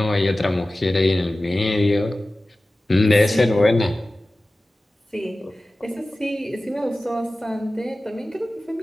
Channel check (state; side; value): normal; both; correlation 0.96